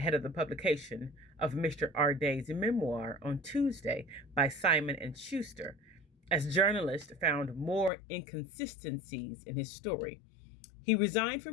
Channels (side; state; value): right; drops out; at 7.9 s